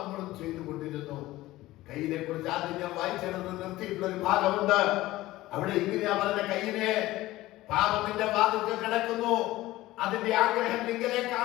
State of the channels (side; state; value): right; quieter; 17.2 dB